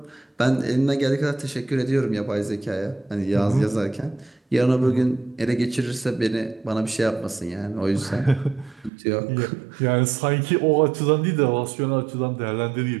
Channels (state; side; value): drops out; left; at 8.9 s